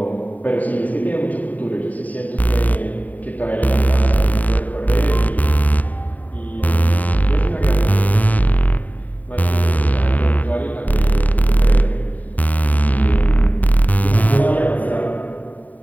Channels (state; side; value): late; right; 0.076 ms